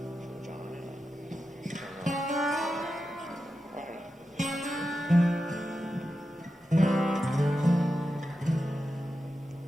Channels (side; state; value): both; normal; correlation 0.90